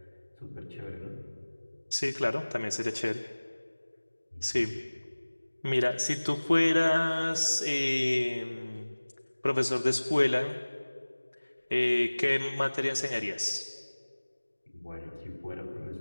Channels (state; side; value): inverted; both; correlation -1.00